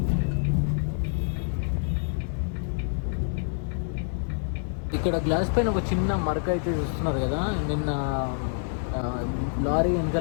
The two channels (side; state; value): right; silent; 60 dB below the other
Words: ఇక్కడ గ్లాస్ పైన ఒక చిన్న మరక అయితే చూస్తున్నారు కదా. నిన్న లారీ